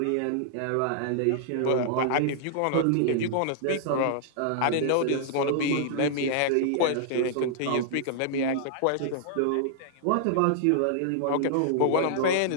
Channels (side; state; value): both; different; correlation -0.01